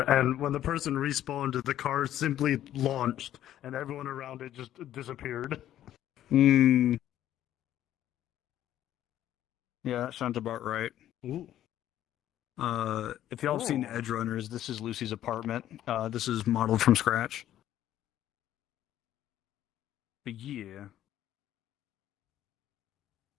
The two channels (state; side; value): quieter; right; 12.2 dB